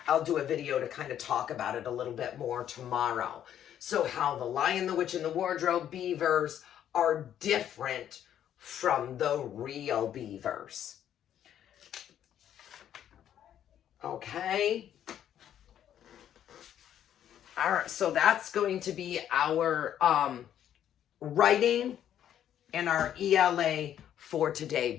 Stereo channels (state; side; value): quieter; right; 10.4 dB